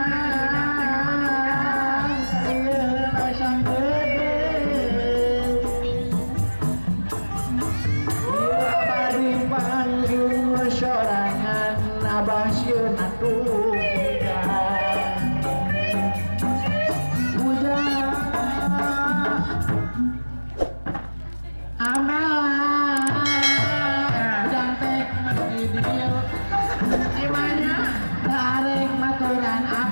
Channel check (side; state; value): both; inverted; correlation -1.00